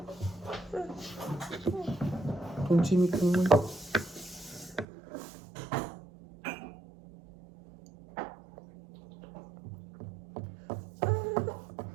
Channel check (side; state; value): left; drops out; at 4.9 s